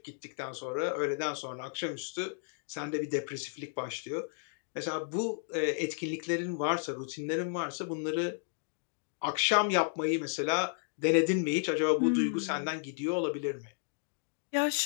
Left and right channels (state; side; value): silent; right; digital silence